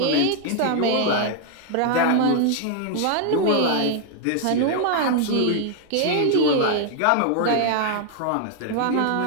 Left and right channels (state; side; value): different; both; correlation 0.00